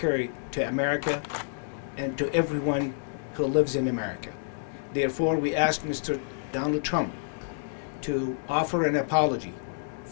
to America and to everyone who lives in America. Therefore, we ask Mr. Donald Trump to offer an apology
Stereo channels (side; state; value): right; silent; digital silence